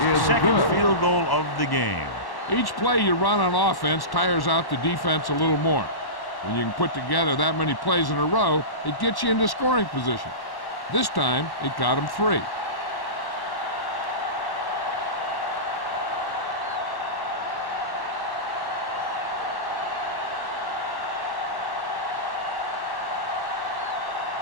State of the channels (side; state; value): right; late; 1.1 ms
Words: second field goal of the game. Each play you run on offense tires out the defense a little more. When you can put together that many plays in a row, it gets you into scoring position. This time, it got him 3.